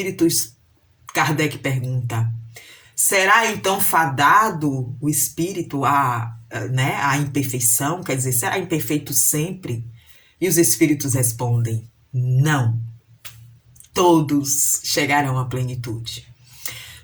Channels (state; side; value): identical; both; correlation 1.00